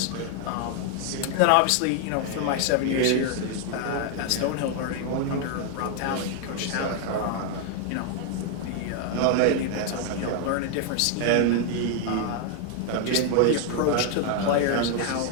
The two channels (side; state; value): both; different; correlation 0.00